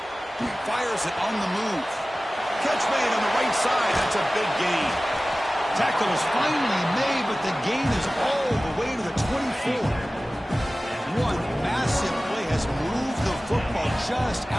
Fires it on the move. Catch made on the right side. That's a big gain. Tackle is finally made, but the gain is all the way to the 24. One massive play has moved the football just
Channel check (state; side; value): normal; both; correlation 0.97